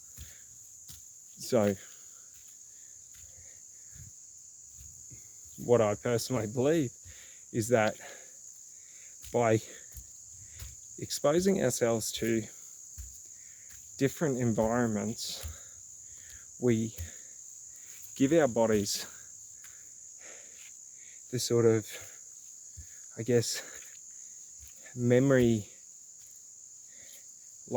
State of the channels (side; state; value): both; identical; correlation 1.00